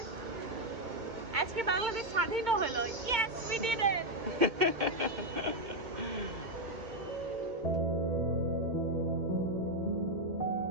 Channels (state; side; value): late; left; 2.2 ms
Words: আজকে বাংলাদেশ স্বাধীন হলো। Yes, we did it.